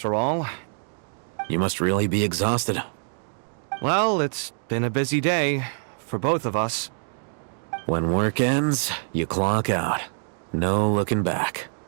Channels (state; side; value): silent; left; digital silence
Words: all. You must really be exhausted. Well, it's been a busy day for both of us. When work ends, you clock out. No looking back.